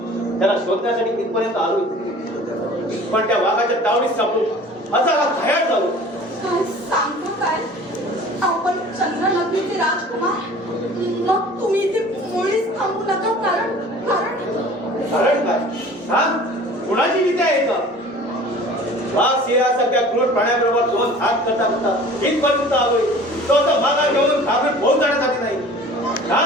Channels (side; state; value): both; normal; correlation 0.45